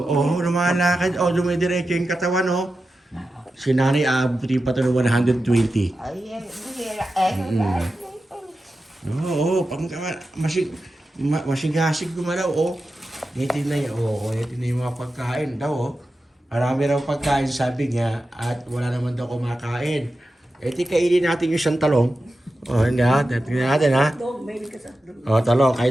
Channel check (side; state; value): both; normal; correlation 0.92